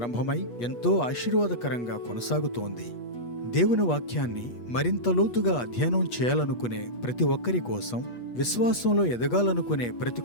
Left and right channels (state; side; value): late; right; 8.3 ms